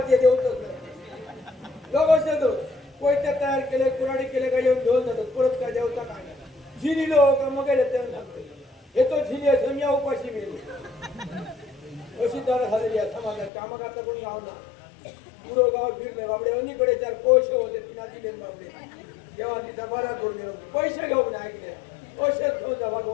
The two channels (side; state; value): right; drops out; at 13.5 s